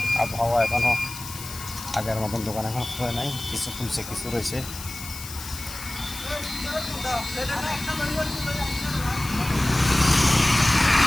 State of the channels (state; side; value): noise; left; hiss, 11 dB below the sound